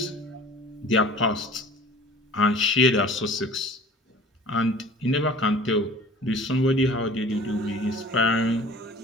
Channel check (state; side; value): normal; both; correlation 0.45